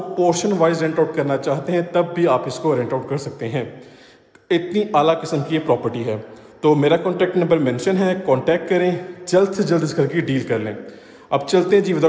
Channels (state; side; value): identical; both; correlation 1.00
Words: पोर्शन वाइज रेंट आउट करना चाहते हैं तब भी आप इसको रेंट आउट कर सकते हैं। इतनी आला किस्म की ये प्रॉपर्टी है। तो मेरा कॉन्टैक्ट नंबर मेंशन है, कॉन्टैक्ट करें, जल्द से जल्द इस घर की डील कर लें। अब चलते हैं जी